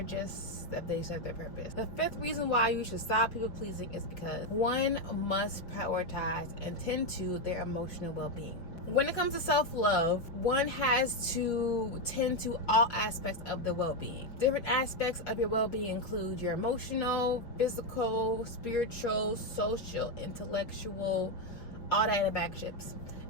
serve their purpose. The fifth reason why you should stop people pleasing is because one must prioritize and tend to their emotional well-being. When it comes to self-love, one has to tend to all aspects of the well-being. Different aspects of your well-being include your emotional, physical, spiritual, social, intellectual, all that in a bag of chips.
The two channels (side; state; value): right; late; 5.4 ms